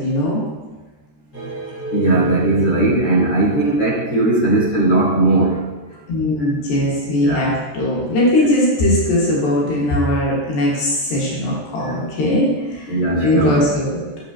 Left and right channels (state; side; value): late; right; 13 ms